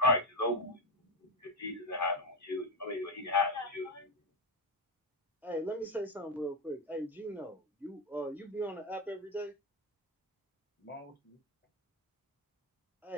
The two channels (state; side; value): normal; both; correlation 0.10